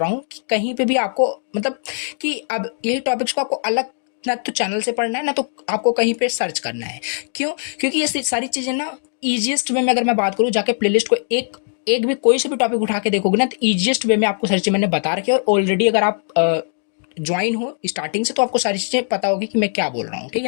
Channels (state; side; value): silent; right; digital silence